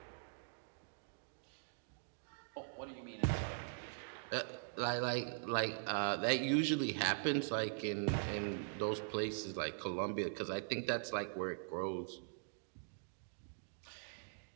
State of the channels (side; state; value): left; silent; digital silence